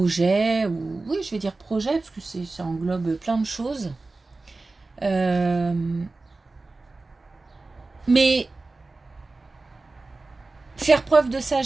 ou oui je vais dire projet parce que ça englobe plein de choses. Mais faire preuve de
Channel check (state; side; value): quieter; left; 3.4 dB